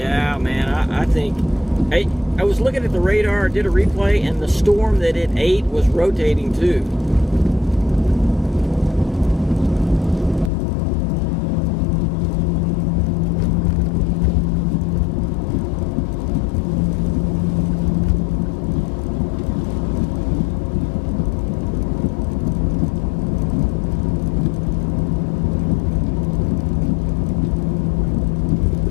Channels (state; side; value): drops out; right; at 10.5 s